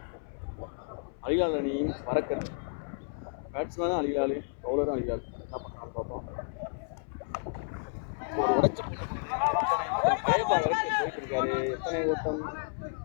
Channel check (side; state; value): right; silent; 57 dB below the other